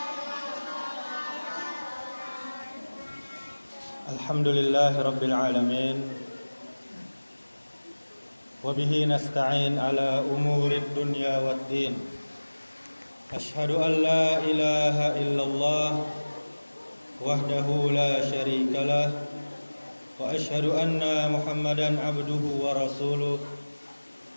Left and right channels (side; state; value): both; inverted; correlation -1.00